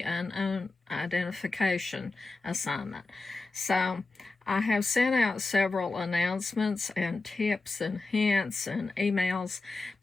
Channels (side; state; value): right; quieter; 3.5 dB